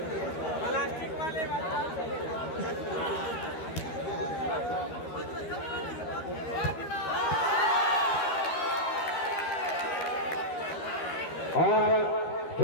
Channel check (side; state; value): right; late; 13 ms